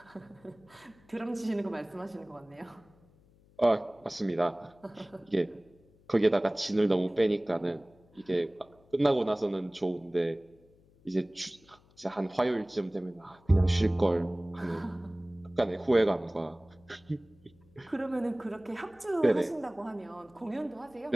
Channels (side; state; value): left; noise; hum, 29 dB below the sound